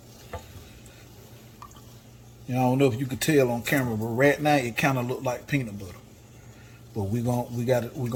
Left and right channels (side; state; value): both; identical; correlation 1.00